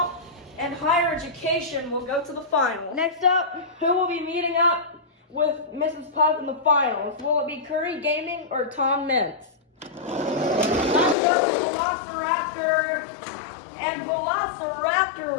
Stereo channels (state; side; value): drops out; right; at 11.2 s